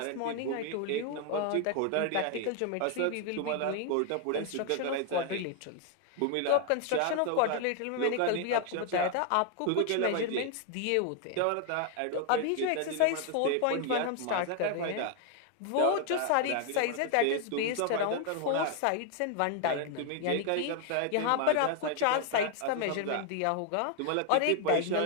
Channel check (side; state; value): both; different; correlation 0.00